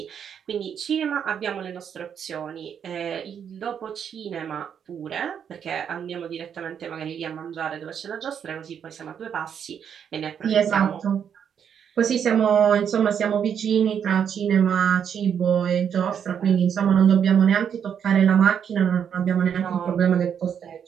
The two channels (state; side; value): quieter; left; 8.1 dB